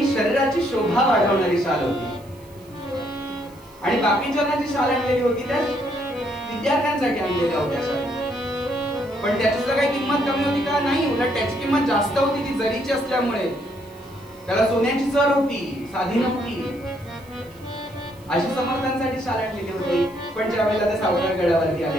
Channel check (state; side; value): noise; right; hiss, 27 dB below the sound